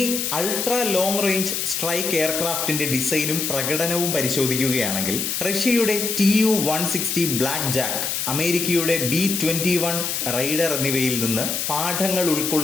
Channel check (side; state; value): left; noise; hiss, 1 dB below the sound